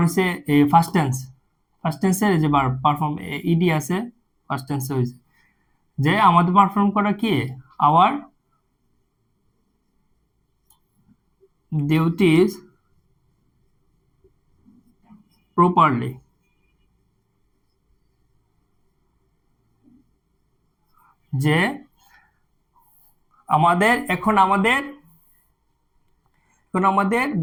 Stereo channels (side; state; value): both; identical; correlation 1.00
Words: হচ্ছে এই ফার্স্ট টেন্স, ফার্স্ট টেন্সের যে বার পারফর্ম ইডি আছে, ফার্স্ট টেন্সে হয়েছে যে আমাদের পারফর্ম করা কি, আওয়ার ডিউটিস প্রপারলি। যে আমাদের